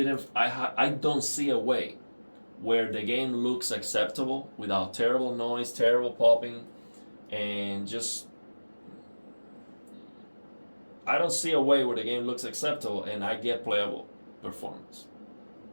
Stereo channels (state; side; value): inverted; both; correlation -1.00